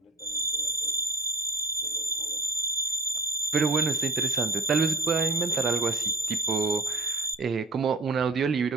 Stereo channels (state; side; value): quieter; left; 3.0 dB